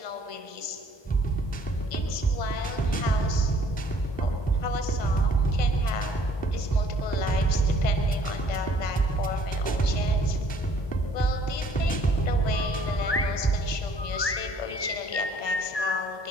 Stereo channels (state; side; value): late; right; 1.2 ms